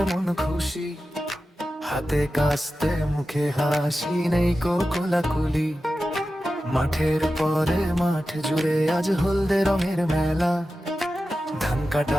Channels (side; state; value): both; normal; correlation 0.93